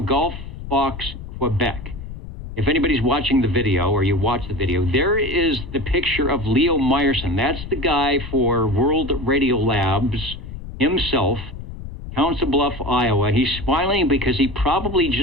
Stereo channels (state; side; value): noise; left; rumble, 10 dB below the sound